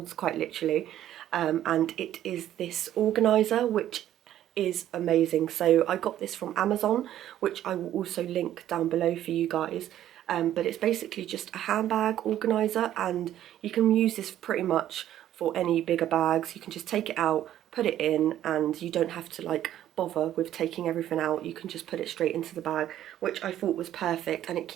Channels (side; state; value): left; quieter; 12.0 dB